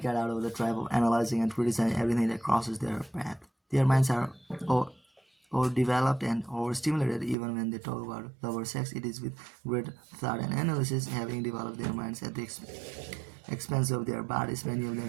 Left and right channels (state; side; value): drops out; left; at 7.4 s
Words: get out of the trap of analyzing and criticizing everything that crosses their path. Their minds are overdeveloped and overstimulated. Even when they talk about love or sex, it is with great thought and analysis, having developed their minds at the expense of their bodies. Many of